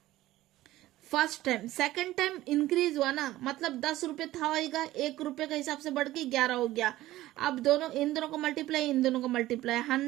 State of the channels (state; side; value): quieter; left; 15.9 dB